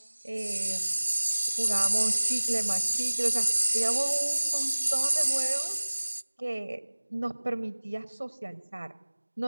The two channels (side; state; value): both; inverted; correlation -1.00